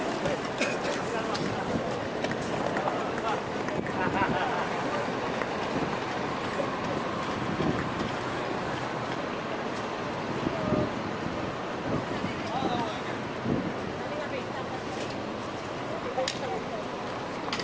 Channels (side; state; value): right; noise; rumble, 23 dB below the sound